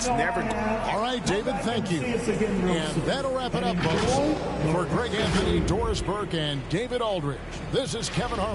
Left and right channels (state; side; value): identical; both; correlation 1.00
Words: never... All right, David, thank you. And that'll wrap it up, folks. For Greg Anthony, Doris Burke, and David Aldridge, this is Kevin